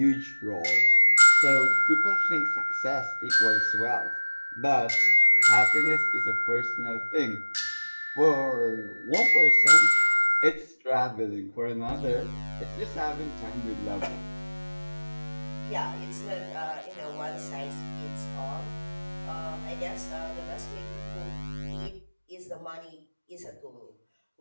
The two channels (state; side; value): inverted; both; correlation -1.00